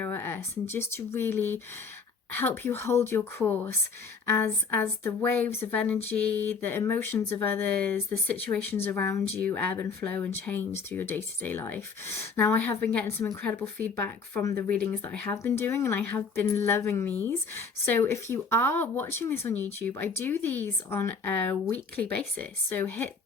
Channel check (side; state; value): right; quieter; 5.0 dB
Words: at us, and just to really help you hold your course as the waves of energy, the emotions of others, the situations around you ebb and flow and change through your day-to-day life. Now, I have been getting some incredible feedback from the readings that I have been doing, and I have been loving these. So if you are watching this on YouTube, I do these on a weekly basis, so hit